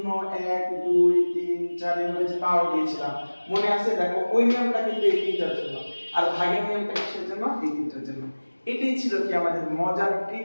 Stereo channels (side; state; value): both; inverted; correlation -1.00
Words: 1 2 3 4 এভাবে যে পাওয়ার দিয়েছিলাম, মনে আছে? দেখো ওই নিয়মটা কিন্তু এই তিনটার জন্য, আর ভাগের নিয়মটা কিসের জন্য, এই তিনটার জন্য। এটাই ছিল কি আমাদের মজার